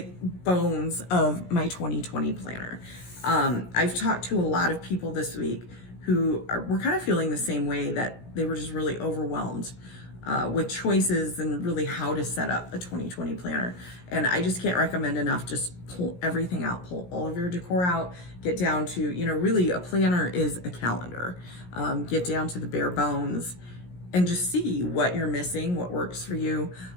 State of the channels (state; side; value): late; right; 17 ms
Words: bones of my 2020 planner. I've talked to a lot of people this week who were kind of feeling the same way, that they were just really overwhelmed with choices and really how to set up a 2020 planner. And I just can't recommend enough, just pull everything out, pull all of your decor out, get down to, you know, really a planner is a calendar. Get down to the bare bones and just see what you're missing, what works for you.